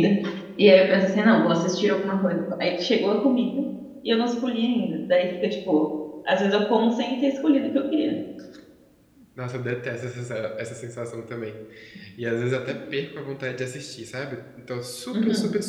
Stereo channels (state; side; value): identical; both; correlation 1.00